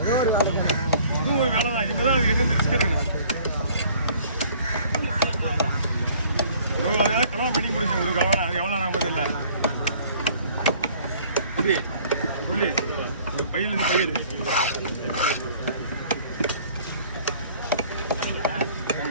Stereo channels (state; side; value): inverted; both; correlation -0.54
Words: ஒரு வேலை தான் இனிமேல் தான் அது எங்கேருந்து ரிஸ்க் எடுக்கணும் அதனால கல்யாணம் பண்ணி கொடுங்க ஒரு கவனம் அது எவ்வளோ நாங்கள் தெரியல புள்ளி ஒரு பையிலேருந்து பயிர்